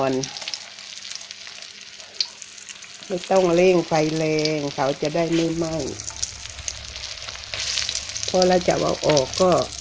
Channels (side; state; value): both; identical; correlation 1.00